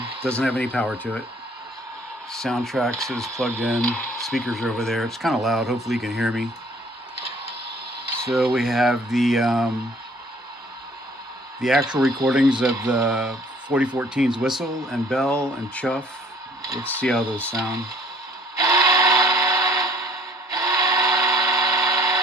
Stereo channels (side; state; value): both; normal; correlation 0.56